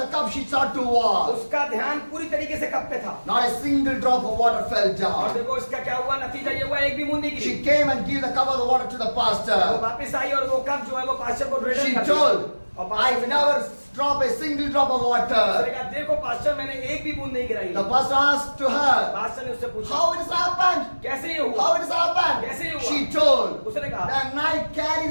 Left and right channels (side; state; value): both; inverted; correlation -1.00